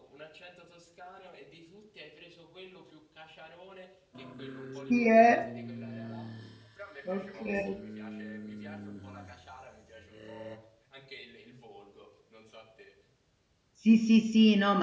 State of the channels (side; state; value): both; identical; correlation 1.00